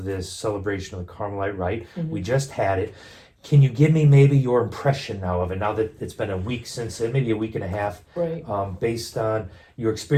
this celebration of the Carmelite Rite. We just had it. Can you give me maybe your impression now of it, now that it's been a week since it, maybe a week and a half, Right. Based on your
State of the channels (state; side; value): identical; both; correlation 1.00